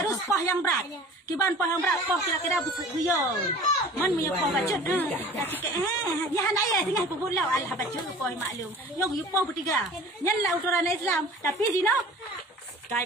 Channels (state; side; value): normal; both; correlation 0.43